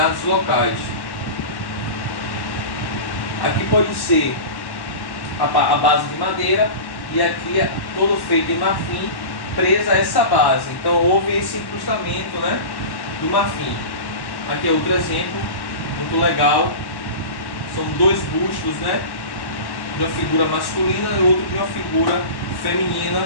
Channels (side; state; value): right; late; 1.1 ms